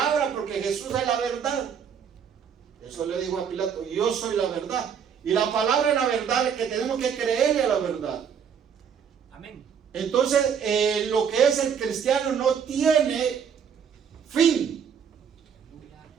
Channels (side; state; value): left; quieter; 7.4 dB